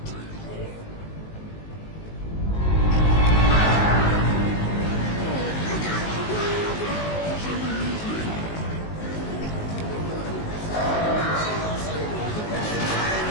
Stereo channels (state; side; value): late; right; 19 ms